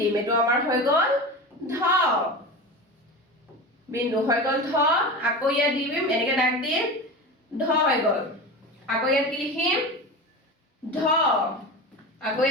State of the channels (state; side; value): normal; both; correlation 0.28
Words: এটো আমাৰ হৈ গল ধ বিন্দু হৈ গল ধ আকৌ ইয়াত দিম এনেকে দাগ দিম ধ হৈ গল আকৌ ইয়াত কি লিখিম ধ আকৌ